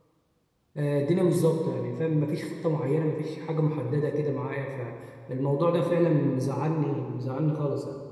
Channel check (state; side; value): identical; both; correlation 1.00